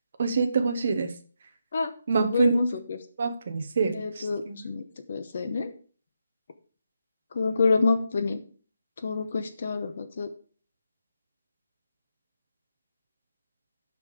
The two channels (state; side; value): inverted; both; correlation -0.83